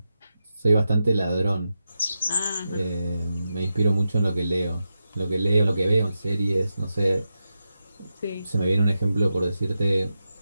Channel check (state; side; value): inverted; both; correlation -0.90